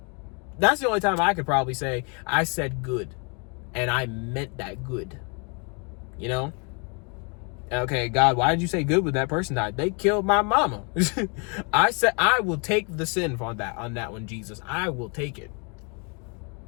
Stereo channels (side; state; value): right; quieter; 34.8 dB